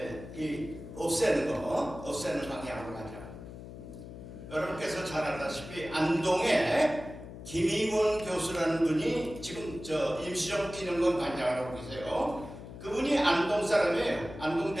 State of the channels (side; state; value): left; noise; hum, 13 dB below the sound